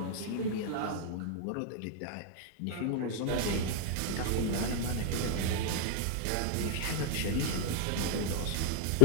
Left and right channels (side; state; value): both; different; correlation 0.00